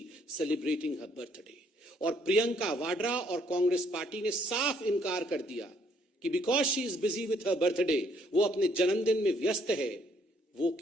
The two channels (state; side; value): normal; both; correlation 0.67